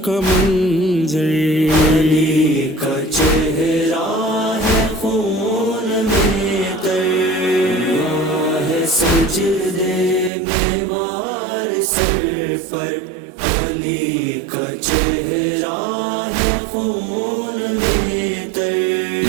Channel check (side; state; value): left; drops out; at 10.3 s